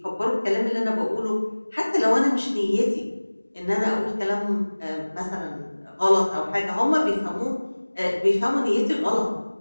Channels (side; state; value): both; inverted; correlation -1.00